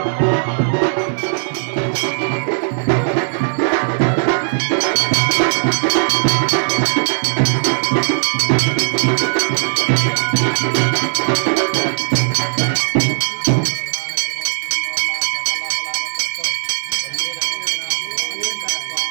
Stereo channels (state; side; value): silent; left; 57 dB below the other